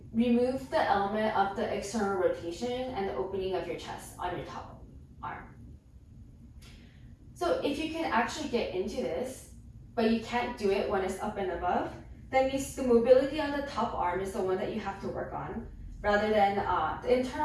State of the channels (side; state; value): both; identical; correlation 1.00